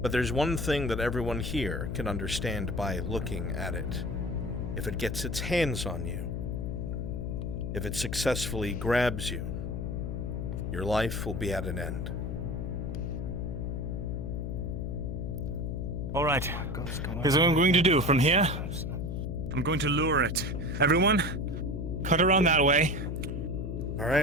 but there's one thing that everyone here can understand by looking at it. If it gets its hands on you, if it successfully grabs you, your life will be at an end. Alright, here's what I'm going to do. From here, I'm going to lure it. Everyone, cut around that way.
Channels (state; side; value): noise; left; hum, 3 dB below the sound